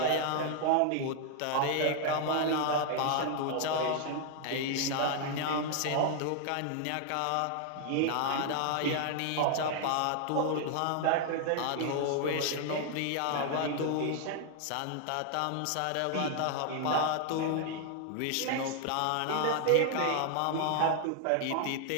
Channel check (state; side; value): different; both; correlation 0.00